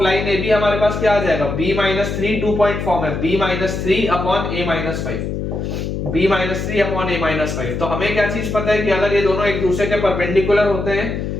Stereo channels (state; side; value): noise; left; hum, 4 dB below the sound